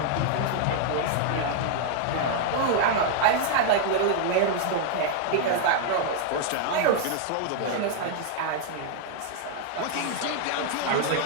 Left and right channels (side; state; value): both; different; correlation 0.00